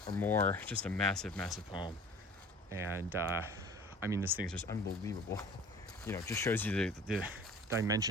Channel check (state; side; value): normal; both; correlation 0.45